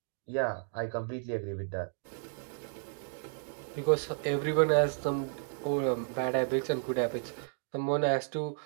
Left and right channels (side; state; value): left; silent; digital silence